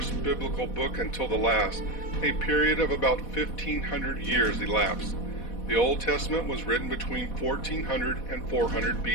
biblical book until the last, a period of about 1,500 years elapsed. The Old Testament was written between 1400 and 400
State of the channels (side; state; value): right; late; 4.1 ms